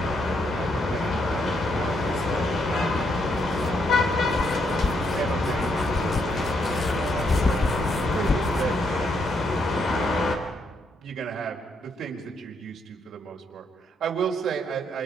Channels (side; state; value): both; normal; correlation 0.76